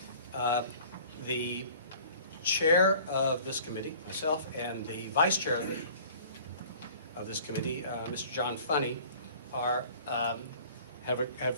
The chair of this committee, myself, and the vice chair of this committee, Mr. John Funny, are I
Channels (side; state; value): both; inverted; correlation -0.48